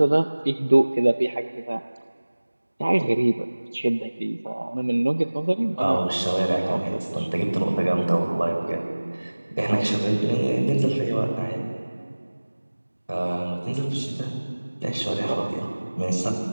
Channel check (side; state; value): both; inverted; correlation -1.00